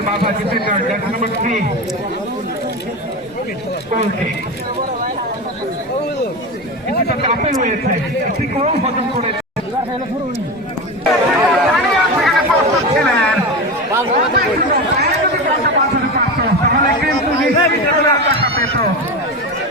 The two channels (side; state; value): both; normal; correlation 0.22